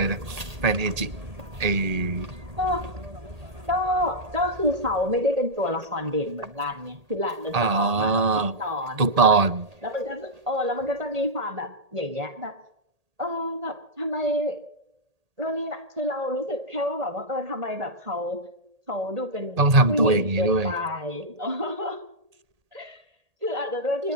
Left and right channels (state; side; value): late; left; 1.8 ms